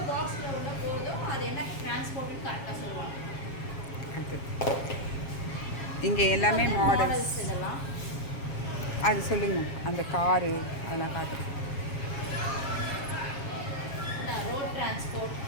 பாக்ஸில் உள்ள போகுதோ அது என்ன டிரான்ஸ்போர்ட்னு கரெக்டாக சொல்லுவாங்க. இங்கே எல்லாமே மாடல்ஸ் இதெல்லாம் அது சொல்லுங்க. அந்த காரு அதெல்லாம் காட்டு.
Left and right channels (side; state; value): right; late; 7.4 ms